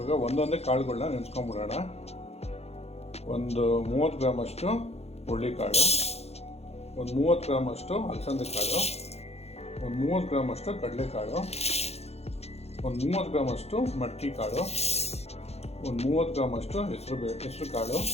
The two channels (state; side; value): late; right; 0.30 ms